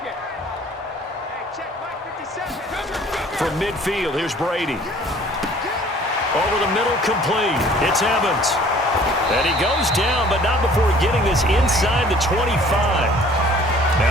From midfield, here's Brady. Over the middle, complete. It's Evans. And he goes down, but not before getting this inside the 25.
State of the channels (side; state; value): both; normal; correlation 0.53